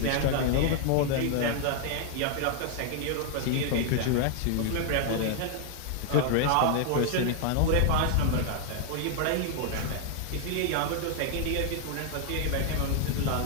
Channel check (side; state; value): both; different; correlation 0.00